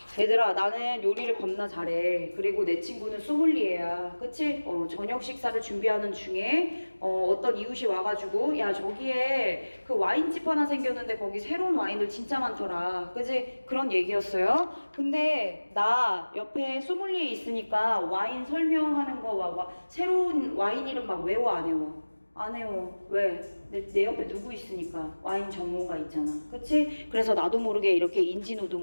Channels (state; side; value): inverted; both; correlation -1.00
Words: 얘들아 나는 요리를 겁나 잘해. 그리고 내 친구는 소믈리에야. 그치? 저녁 식사를 준비하는 중에 어떤 이웃이 와가지고 야 저기에 그 와인집 하나 생겼는데 거기 새로운 와인들 진짜 많더라. 그치? 그런 얘기였어요. 근데 나 옆에 소믈리에 있으니까 와인 설명하는 거 새로운 와인 이름 막 외워 안 외워? 안 해요. 왜? 내 옆에 누구 있으니까. 와인 전문가 있잖아. 그치? 그래서 나도 모르게 이렇게